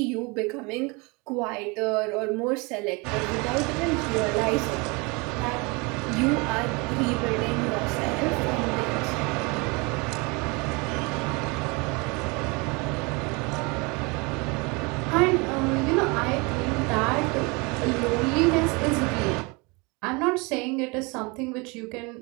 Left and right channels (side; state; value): left; quieter; 28.2 dB